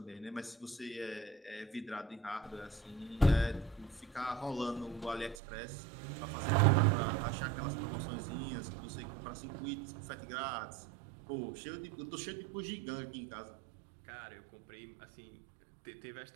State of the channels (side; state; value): left; drops out; at 5.4 s